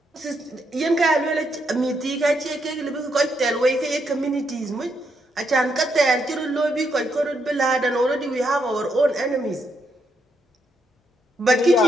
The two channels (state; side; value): normal; both; correlation 0.78